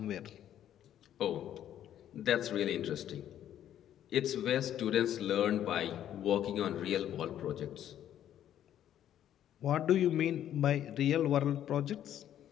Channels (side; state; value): right; quieter; 11.0 dB